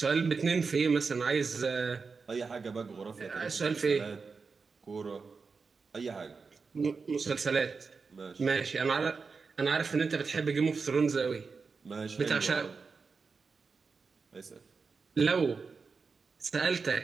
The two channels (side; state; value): left; quieter; 4.9 dB